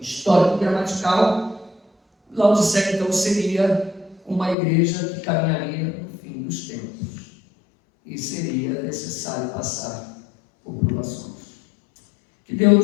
histórico-gramatical, Laodiceia então seria uma igreja que caminharia no fim dos tempos e seria necessário passar por provações. Que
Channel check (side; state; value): right; drops out; at 4.5 s